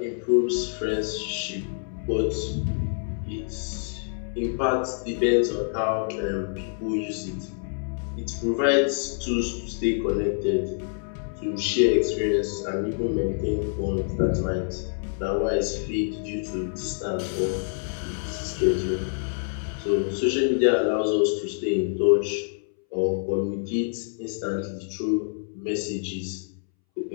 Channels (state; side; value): silent; right; 61 dB below the other